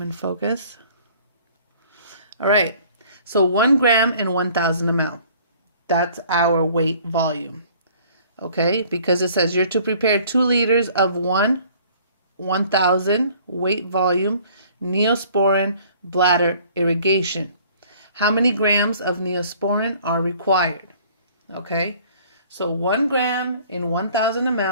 in focus. All right. So 1 gram in 1,000 ml. That's our weight volume. Okay. Because it says you're to prepare 2 liters of 1,000 weight volume Neosporin bladder irrigation. How many grams of Neosporin are required? Okay. So 1 gram in 1,000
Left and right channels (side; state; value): both; inverted; correlation -0.54